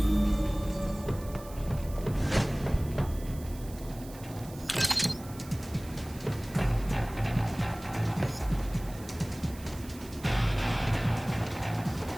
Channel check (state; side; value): noise; right; hiss, 19 dB below the sound